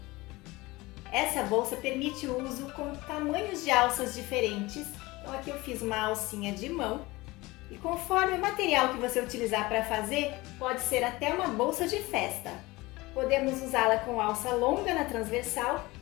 Essa bolsa permite o uso com tamanhos de alças diferentes. Então aqui eu fiz uma alcinha de mão e conforme o material que você utilizar para fazer, pode ser até uma bolsa de festa. Podemos usá-la com alça longa na transversal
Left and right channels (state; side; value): quieter; right; 21.2 dB